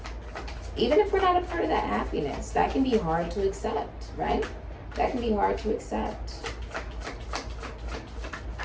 Even if we're not a part of that happiness, that can be hard to accept, right? That can be hard to accept.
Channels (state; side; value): identical; both; correlation 1.00